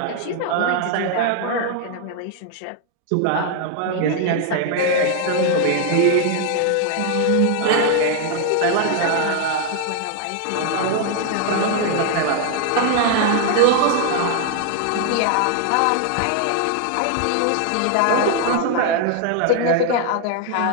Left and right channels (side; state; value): both; different; correlation 0.00